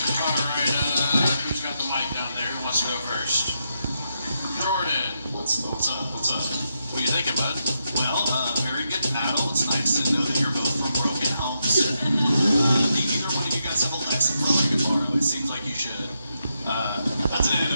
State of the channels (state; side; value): inverted; both; correlation -0.83